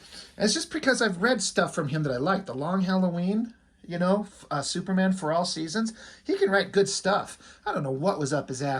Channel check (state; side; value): identical; both; correlation 1.00